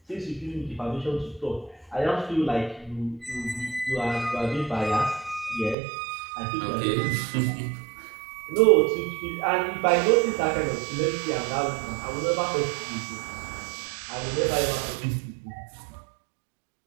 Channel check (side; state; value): left; drops out; at 5.8 s